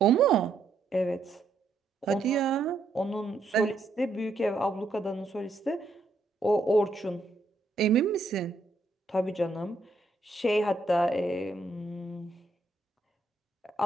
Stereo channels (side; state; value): left; quieter; 3.2 dB